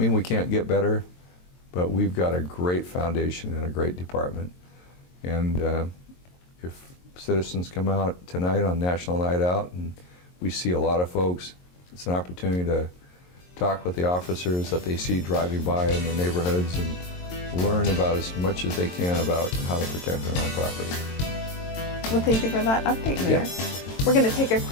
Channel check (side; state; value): right; late; 22 ms